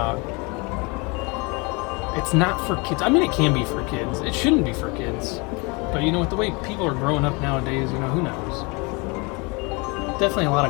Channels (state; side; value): quieter; right; 28.7 dB